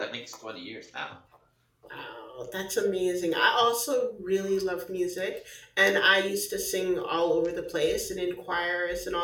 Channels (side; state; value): both; identical; correlation 1.00